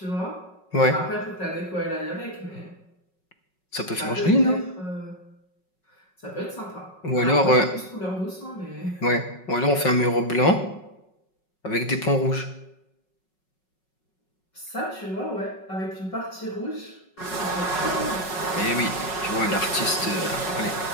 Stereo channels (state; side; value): late; right; 5.4 ms